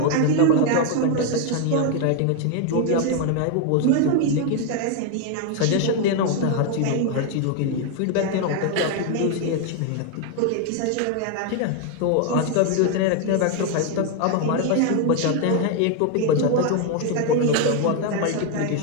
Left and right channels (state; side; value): different; both; correlation 0.01